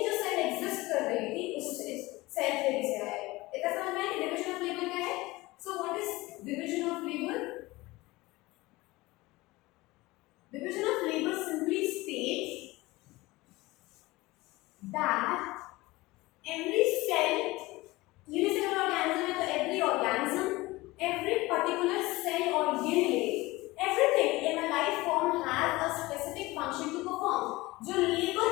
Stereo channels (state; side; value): quieter; right; 20.5 dB